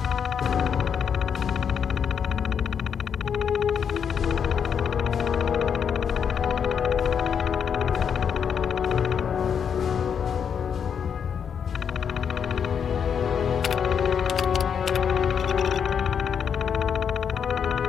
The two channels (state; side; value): quieter; right; 7.4 dB